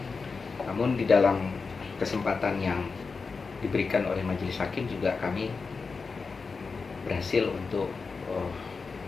Namun di dalam kesempatan yang diberikan oleh majelis hakim juga kami berhasil untuk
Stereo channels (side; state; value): right; quieter; 4.6 dB